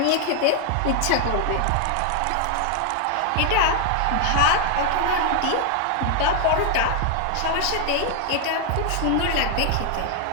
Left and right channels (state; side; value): different; both; correlation 0.00